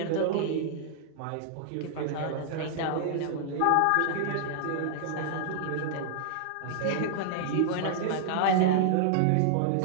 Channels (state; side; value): different; both; correlation -0.01